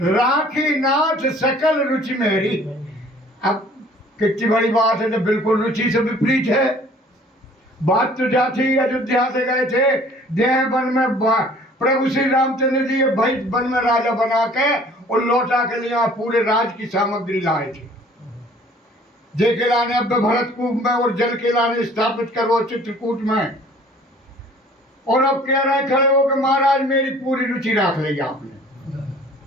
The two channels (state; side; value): normal; both; correlation 0.53